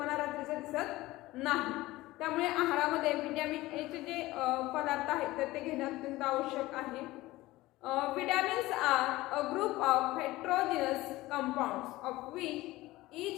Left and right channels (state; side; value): quieter; right; 18.5 dB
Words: रात्रीचं दिसत नाही. त्यामुळे आहारामध्ये व्हिटॅमिन एचे जे पदार्थ आहेत तर ते घेणं अत्यंत आवश्यक आहे. Vitamins are a group of heterogeneous compounds of which